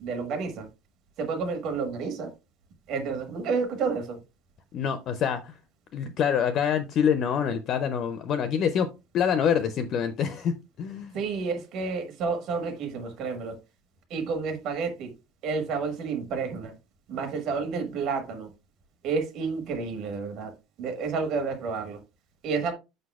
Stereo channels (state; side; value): normal; both; correlation 0.47